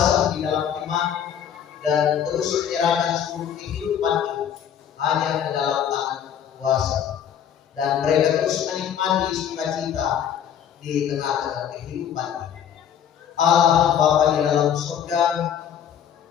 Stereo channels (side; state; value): right; quieter; 9.1 dB